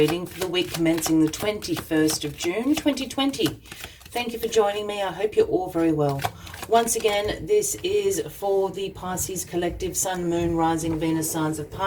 for the week commencing the 21st of June 2020. Thank you for joining me. I hope you're all very well. Once again, this is for the Pisces Collective Sun, Moon, Rising, Venus signs of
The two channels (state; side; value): identical; both; correlation 1.00